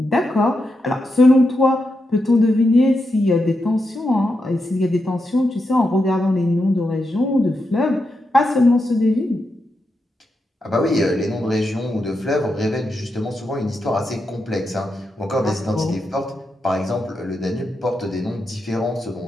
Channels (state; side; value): normal; both; correlation 0.85